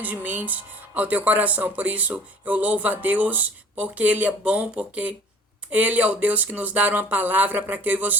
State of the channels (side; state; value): both; normal; correlation 0.47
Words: ao teu coração. Por isso eu louvo a Deus, porque Ele é bom, porque Ele é o Deus que nos dá uma palavra para que eu e